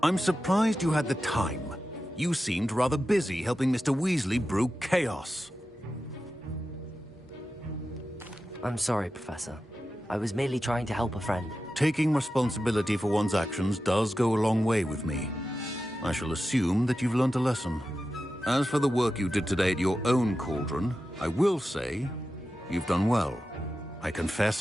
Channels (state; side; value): normal; both; correlation 0.92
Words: I'm surprised you had the time. You seemed rather busy helping Mr. Weasley brew chaos. I'm sorry, Professor. I was merely trying to help a friend. Taking responsibility for one's actions does go a long way with me. I shall assume that you've learnt a lesson. As for the work you did today at your own cauldron, I will say you've done well. I